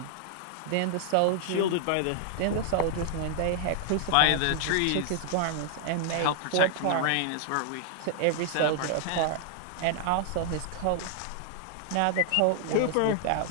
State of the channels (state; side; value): different; both; correlation 0.00